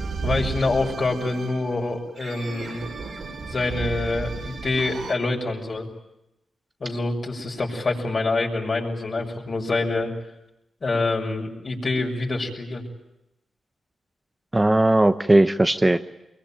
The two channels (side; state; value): both; normal; correlation 0.93